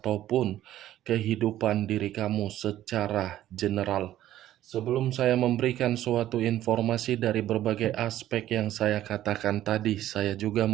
kehidupan diri kamu secara general. Sebelum saya memberikan suatu informasi dari berbagai aspek yang saya katakan tadi, saya juga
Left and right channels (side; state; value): left; quieter; 13.1 dB